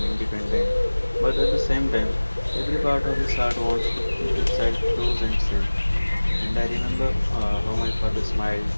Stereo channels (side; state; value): both; inverted; correlation -1.00